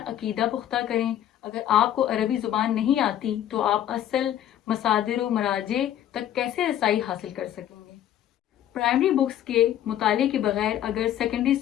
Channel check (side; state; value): right; quieter; 11.4 dB